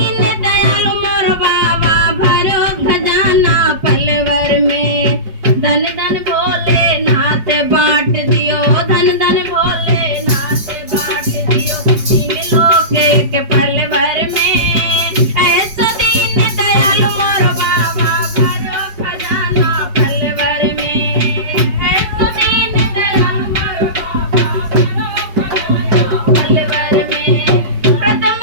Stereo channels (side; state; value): left; late; 5.2 ms